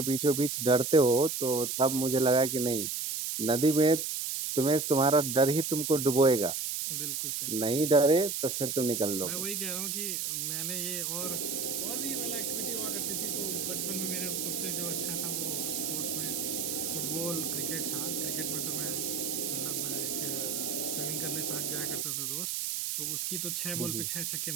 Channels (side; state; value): right; noise; hiss, 2 dB below the sound